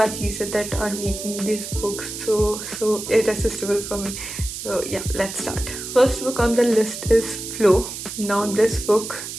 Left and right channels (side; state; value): right; noise; hiss, 8 dB below the sound